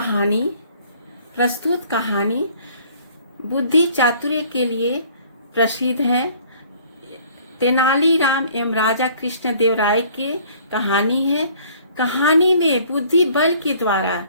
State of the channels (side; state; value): both; inverted; correlation -0.56